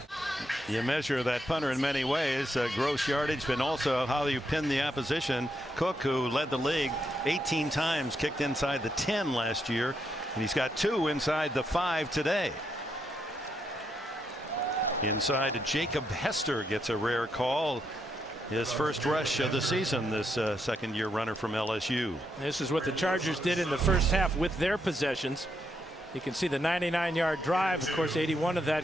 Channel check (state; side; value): normal; both; correlation 0.80